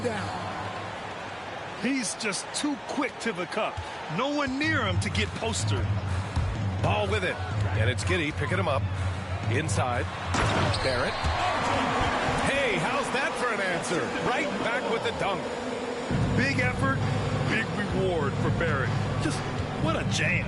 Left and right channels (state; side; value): identical; both; correlation 1.00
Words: He's just too quick to the cup. No one near him to get postered. Ball with it. And it's Giddey picking him up. Inside. Barrett. Hey, how's that for an answer? Right back with the dunk. Big effort, big reward for Barrett. Just what a jam.